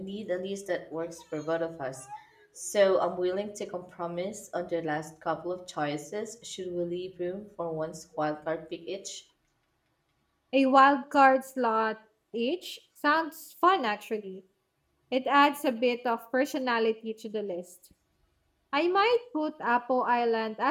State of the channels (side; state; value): both; identical; correlation 1.00